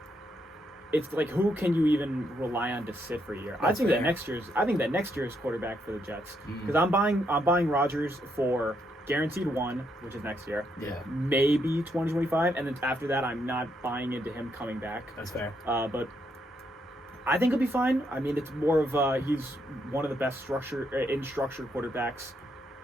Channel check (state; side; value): normal; both; correlation 0.77